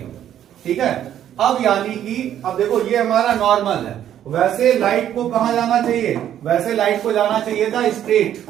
ठीक है। अब यानी कि अब देखो ये हमारा नॉर्मल है, वैसे लाइट को कहां जाना चाहिए, वैसे लाइट को जाना चाहिए था स्ट्रेट,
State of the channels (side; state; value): left; quieter; 10.8 dB